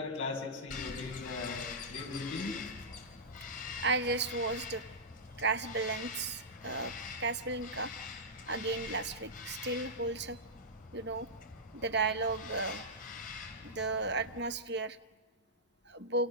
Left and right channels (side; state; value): both; normal; correlation -0.13